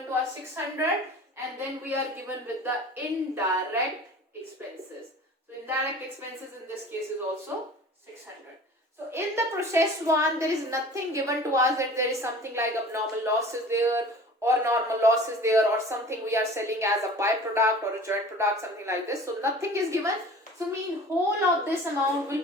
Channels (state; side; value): normal; both; correlation 0.42